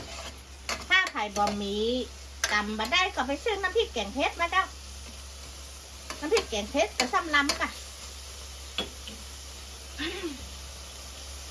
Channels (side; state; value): both; identical; correlation 1.00